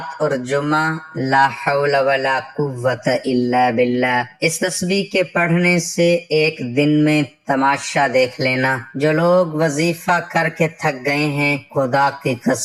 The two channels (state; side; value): identical; both; correlation 1.00